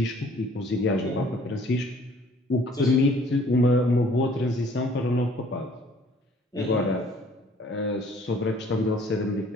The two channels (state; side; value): normal; both; correlation 0.57